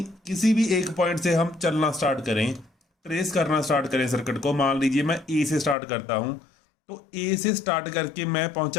किसी भी एक पॉइंट से हम चलना स्टार्ट करें, ट्रेस करना स्टार्ट करें सर्किट को, मान लीजिए मैं ए से स्टार्ट करता हूँ, तो ए से स्टार्ट करके मैं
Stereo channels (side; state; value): right; drops out; at 5.8 s